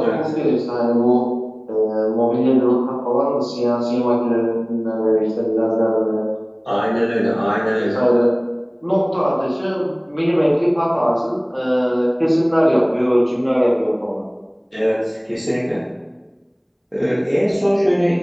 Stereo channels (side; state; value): both; identical; correlation 1.00